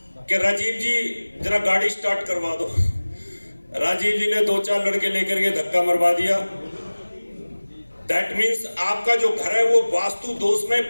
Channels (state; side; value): inverted; both; correlation -1.00